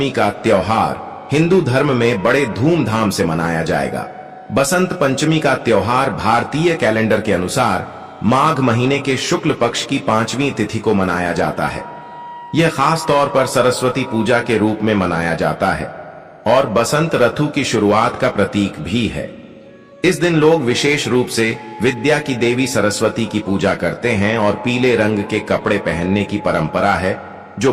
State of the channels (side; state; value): both; identical; correlation 1.00